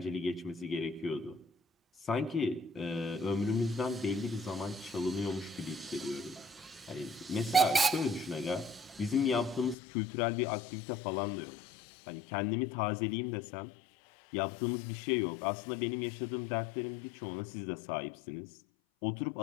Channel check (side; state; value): right; drops out; at 9.8 s